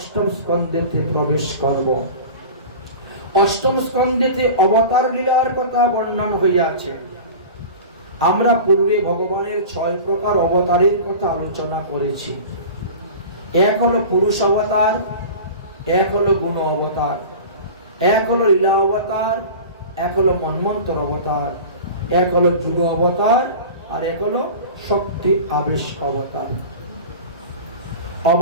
স্কন্ধেতে প্রবেশ করব। অষ্টম স্কন্ধেতে অবতার লীলার কথা বর্ণন হইয়াছে। আমরা পূর্বে ভগবানের 6 প্রকার অবতারের কথা আলোচনা করেছি। এক হলো পুরুষ অবতার, এক হলো গুণ অবতার, এক হলো লীলা অবতার, এক হলো মন্বন্তর অবতার, এক হলো যুগ অবতার, আর এক হলো শক্তি আবেশ অবতার।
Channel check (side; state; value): both; inverted; correlation -0.35